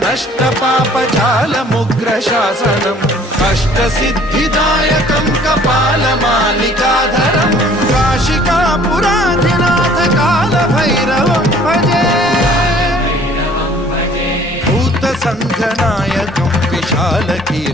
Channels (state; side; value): normal; both; correlation 0.54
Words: नष्ट पापजालमुग्र शासनम् अष्टसिद्धिदायकं कपालमालिकाधरं काशिकापुराधिनाथ कालभैरवं भजे भूतसङ्घनायकं